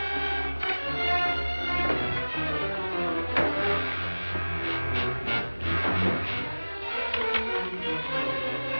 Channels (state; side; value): inverted; both; correlation -1.00